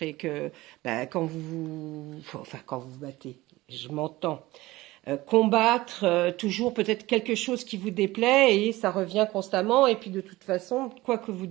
et que bah, enfin, quand vous vous battez, je m'entends. Combattre toujours peut-être quelque chose qui vous déplaît et ça revient constamment. Et puis de toute façon, quoi que vous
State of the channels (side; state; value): left; quieter; 18.9 dB